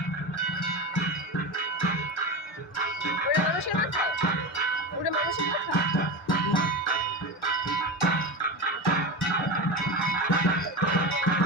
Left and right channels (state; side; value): normal; both; correlation 0.22